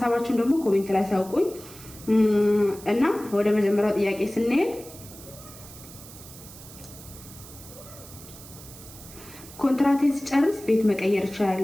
ደግሞ ኮሜንት ላይ ሳውቁኝ እና ወደ መጀመሪያው ጥያቄ ስንሄድ ኮንትራቴን ስጨርስ ቤት መቀየር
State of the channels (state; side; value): noise; right; hiss, 17 dB below the sound